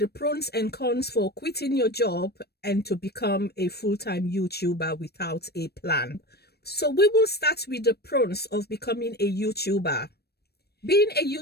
pros and cons for quitting your job and to become a full-time YouTuber without a plan. So we will start with the pros of becoming a YouTuber. Being a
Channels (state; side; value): late; right; 0.47 ms